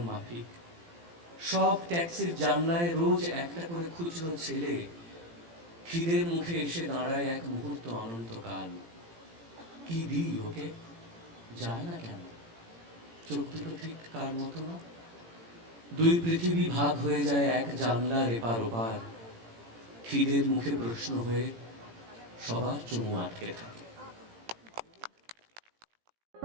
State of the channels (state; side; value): late; left; 18 ms